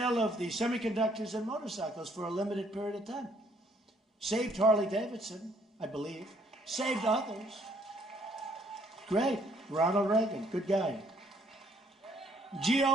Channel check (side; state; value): both; normal; correlation 0.65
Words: of the semiconductors and motorcycles for a limited period of time. Saved Harley-Davidson, I believe. Saved others. Great. Ronald Reagan, good guy.